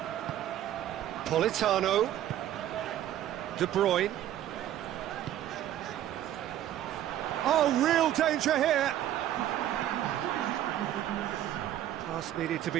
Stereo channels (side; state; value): left; quieter; 12.1 dB